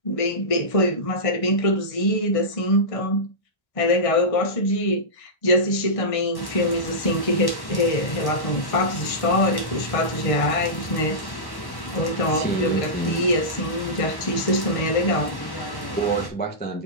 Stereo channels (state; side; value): late; right; 1.1 ms